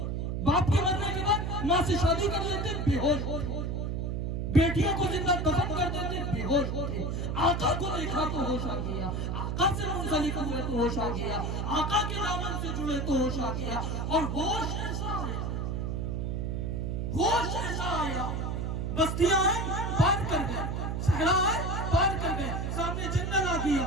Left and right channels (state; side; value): noise; right; hum, 1 dB below the sound